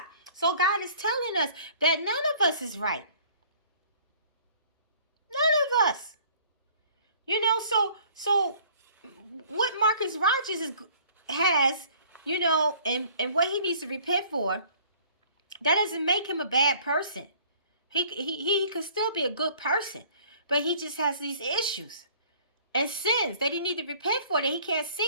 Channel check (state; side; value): inverted; both; correlation -0.53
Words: So God is telling us that none of us is right. None of us. You know, so what Marcus Rogers has, you know, and what he needs to repent for, that doesn't make him a bad person. He could still be a good person, but he just has these issues and sins that he needs to repent for that he can't